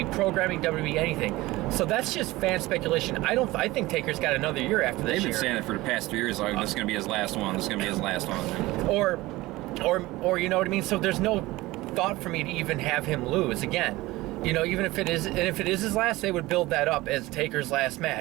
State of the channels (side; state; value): left; quieter; 19.2 dB